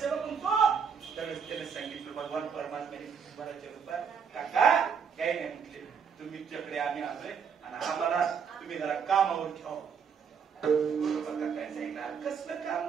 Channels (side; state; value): left; quieter; 6.7 dB